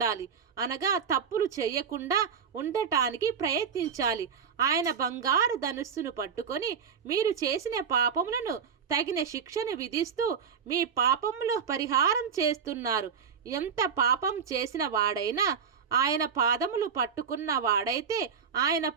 అనగా తప్పులు చేయకుండా ఉండటానికి ప్రయత్నించాలి. ఆయన బంగారు ధనుస్సును పట్టుకొని మీరు చేసిన పాపములను తగిన శిక్షను విధిస్తూ మీ పాపములో పరిహారం చేస్తున్నారు. ఎంత పాపం చేసిన వాడైనా ఆయన పాదములు పట్టుకున్న వాడైతే ఆయన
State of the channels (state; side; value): quieter; left; 6.8 dB